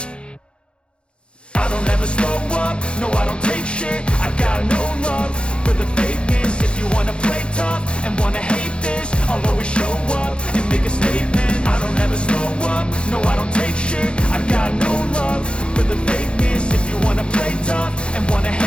I don't ever slow up, no I don't take shit. I got no love for the fakeness. If you wanna play tough and wanna hate this, I'll always show up and make a statement. I don't ever slow up, no I don't take shit. I got no love for the fakeness. If you wanna play tough and wanna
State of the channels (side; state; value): right; late; 0.056 ms